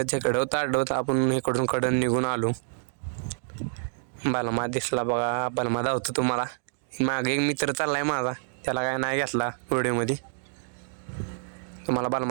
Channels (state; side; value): silent; left; digital silence